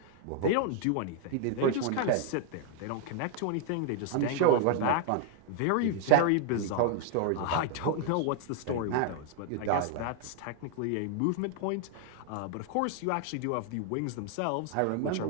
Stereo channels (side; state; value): both; different; correlation 0.00